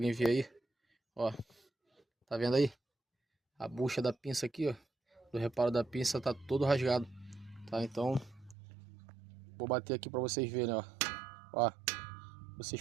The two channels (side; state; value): left; drops out; at 8.6 s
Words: ver aí, ó. Tá vendo aí? A bucha da pinça aqui, ó. Do reparo da pinça tá todo rasgado, tá? Então, vou bater aqui para vocês verem, ó. Ó, vocês